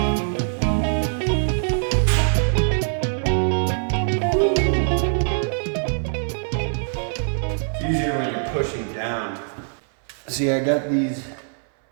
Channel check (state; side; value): silent; left; 64 dB below the other